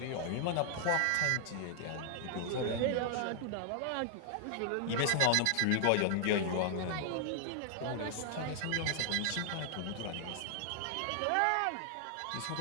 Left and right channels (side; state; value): both; different; correlation 0.00